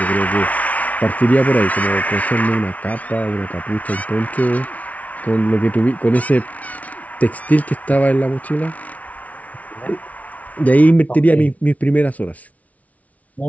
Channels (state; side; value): late; right; 0.069 ms